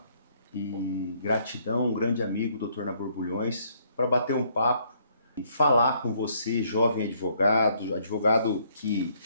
e gratidão um grande amigo, o Dr. Nabor Bulhões, para bater um papo e falar com você, jovem advogado, advogado que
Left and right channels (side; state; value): both; inverted; correlation -0.67